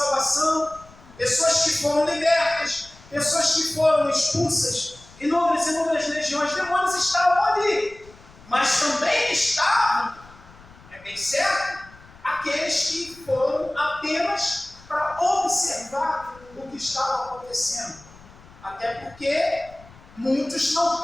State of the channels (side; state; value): left; noise; rumble, 23 dB below the sound